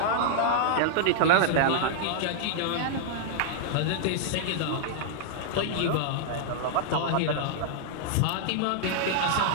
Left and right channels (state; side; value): different; both; correlation -0.01